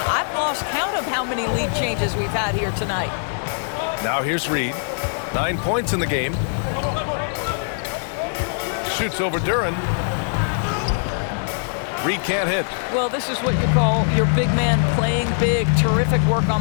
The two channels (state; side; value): silent; right; digital silence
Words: I've lost count of how many lead changes we've had here tonight. Now here's Reed. 9 points in the game. Shoots over Duren. Reed can't hit. Well, this is what you call your big man playing big. Terrific work